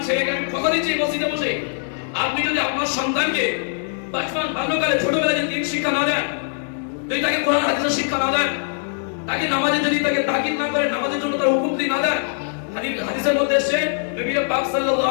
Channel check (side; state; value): right; silent; digital silence